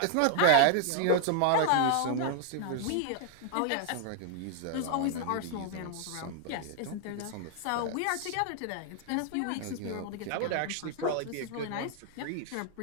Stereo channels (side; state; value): both; different; correlation 0.00